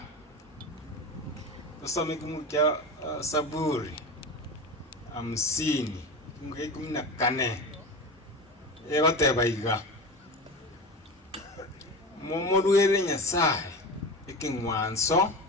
Tusome kumukya Saburi 50 14 egoteba iga momoruere Nyasaye ekingwanso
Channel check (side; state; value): both; normal; correlation 0.27